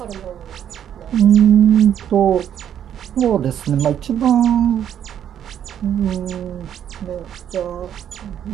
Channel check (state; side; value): quieter; left; 9.7 dB